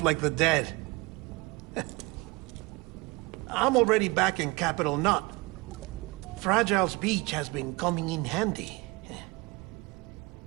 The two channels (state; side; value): quieter; left; 24.7 dB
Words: like the dead. I'm already back in Capital Knot. Fragile's beach has been coming in handy.